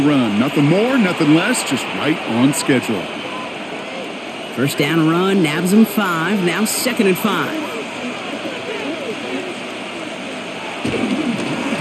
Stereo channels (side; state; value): both; identical; correlation 1.00